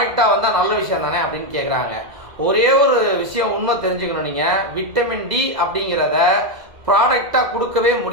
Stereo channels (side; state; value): left; late; 2.0 ms